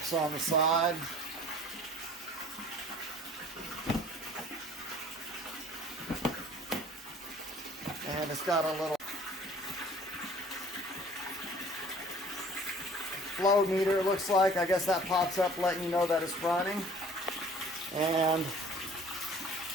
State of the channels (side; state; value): both; normal; correlation 0.50